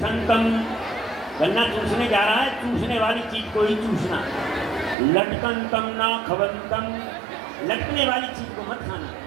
गन्ना चूसने जा रहा है, चूसने वाली चीज को ही चूसना। लटकंतम ना खवंतम, लटकने वाली चीज को मत खाना।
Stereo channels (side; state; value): left; drops out; at 5.0 s